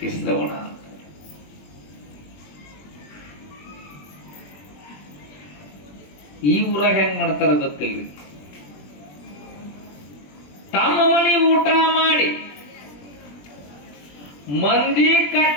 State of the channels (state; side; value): late; right; 21 ms